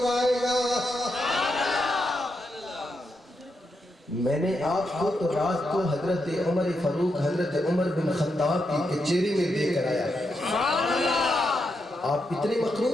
گا. میں نے آپ کو تو رات کو حضرت عمر فاروق حضرت عمر بن خطاب کی کچہری میں دے کر آیا. آپ اتنے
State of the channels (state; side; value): normal; both; correlation 0.83